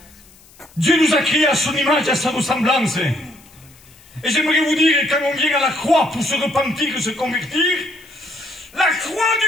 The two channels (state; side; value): noise; left; hiss, 26 dB below the sound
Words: Dieu nous a créés à son image et à sa ressemblance. Et j'aimerais vous dire, quand on vient à la croix pour se repentir, se convertir, la croix